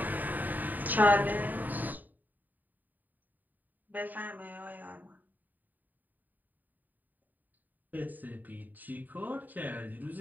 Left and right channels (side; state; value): left; late; 0.086 ms